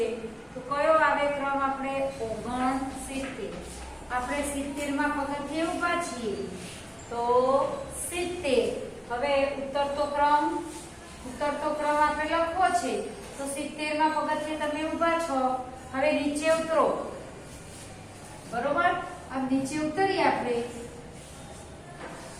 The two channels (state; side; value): identical; both; correlation 1.00